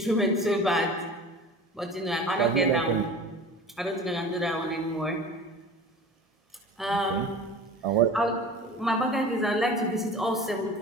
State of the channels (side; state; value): both; normal; correlation 0.38